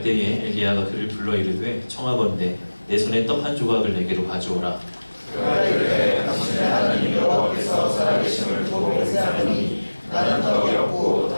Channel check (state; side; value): inverted; both; correlation -1.00